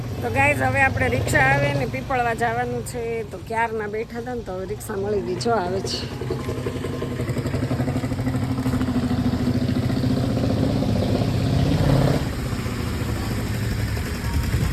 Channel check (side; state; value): both; identical; correlation 1.00